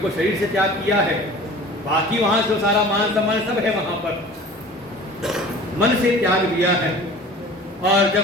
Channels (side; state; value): both; normal; correlation 0.43